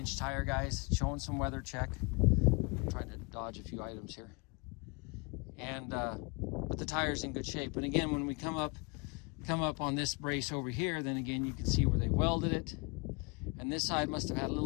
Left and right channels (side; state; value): right; quieter; 29.4 dB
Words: tire, guys, showing some weather check. I'm trying to dodge a few items here. And but the tire's in good shape. And again, when we come up on this brace over here, then again you can see where they welded it. And this side must have had a